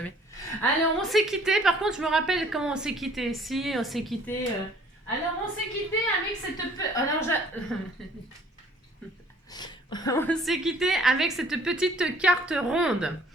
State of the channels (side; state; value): both; normal; correlation 0.57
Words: Alors on s'est quitté, par contre je me rappelle comment on s'est quitté. Si, on s'est quitté... Alors on s'est quitté avec cette... Alors on s'est quitté avec cette petite carte ronde.